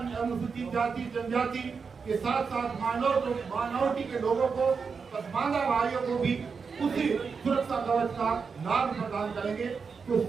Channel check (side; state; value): left; quieter; 5.4 dB